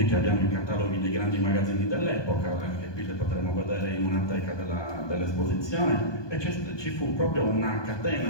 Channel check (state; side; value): late; right; 1.2 ms